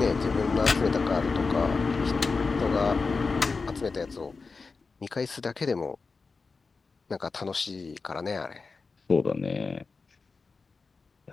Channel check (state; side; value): quieter; right; 4.4 dB